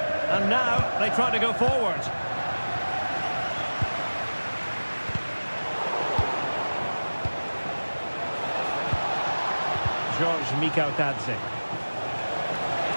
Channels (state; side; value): inverted; both; correlation -1.00